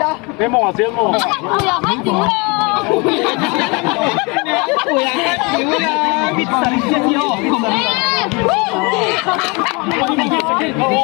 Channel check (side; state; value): right; quieter; 28.9 dB